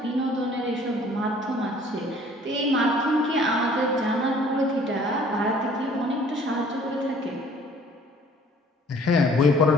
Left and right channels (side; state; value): both; normal; correlation 0.55